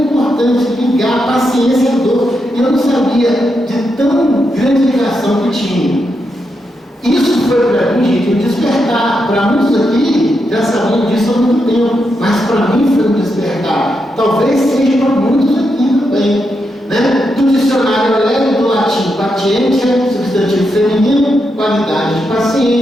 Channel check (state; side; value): normal; both; correlation 0.84